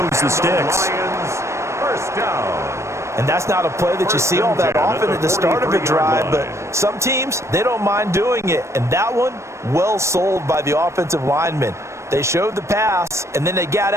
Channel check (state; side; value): late; left; 0.13 ms